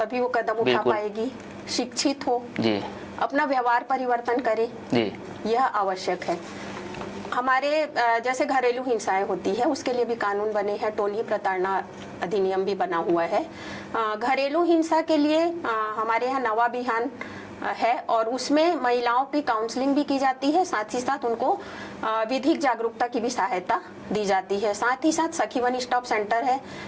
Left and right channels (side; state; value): both; identical; correlation 1.00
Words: वो कदम उठा बिल्कुल। पाएगी, शिक्षित हो, जी अपना व्यवहार परिवर्तन करे, जी यह आवश्यक है। हमारे जैसे घरेलू हिंसाएं होती है उसके लिए भी कानून बने हैं, टोनही प्रताड़ना अधिनियम भी बना हुआ है। घरेलू हिंसा के लिए हमारे यहाँ नवा अभियान है और उसमें महिलाओं की काउंसलिंग भी की जाती है, साथ ही साथ उनको विधिक जागरूकता की भी सहायता दी जाती है। साथ ही साथ सखी वन स्टॉप सेंटर है